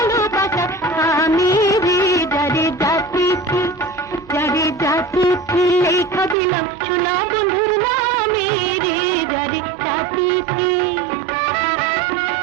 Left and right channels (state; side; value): drops out; left; at 6.4 s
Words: আমি রে যারে জাতি লেখা দিলাম সোনা বন্ধুর নামে রে যারে জাতি